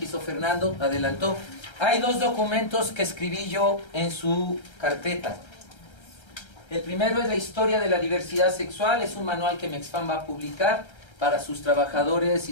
hizo Fernando, adelantó. Hay dos documentos que escribí yo en su carpeta. El primero es la historia de la diversidad sexual, es un manual que Mexfam va a publicar para sus trabajadores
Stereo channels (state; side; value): late; right; 1.3 ms